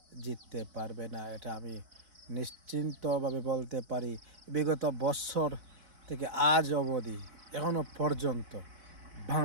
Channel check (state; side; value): late; left; 4.1 ms